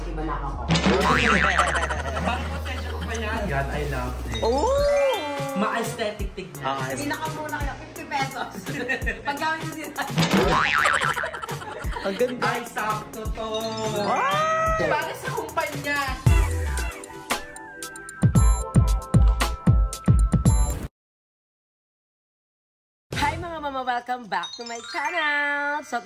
iba nakako. Parang potential ko pa yan. God, I love it. Oh! Ma-aesthetic tignan. Pinakamuna kaya 50 pesos. Paggamit mo sila. Ang ganda. Ay, sakto to. Wow! Para sa kumpanya. Hi mga mama! Welcome back to my channel! So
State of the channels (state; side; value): identical; both; correlation 1.00